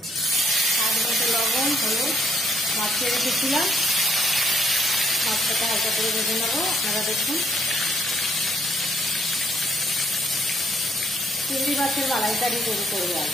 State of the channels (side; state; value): both; normal; correlation 0.69